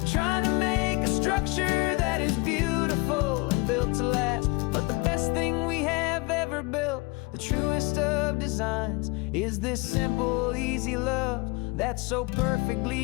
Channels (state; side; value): quieter; right; 26.6 dB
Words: trying to make a structure that is beautiful and built to last. But the best thing we have ever built, the truest of designs, is this simple, easy love that so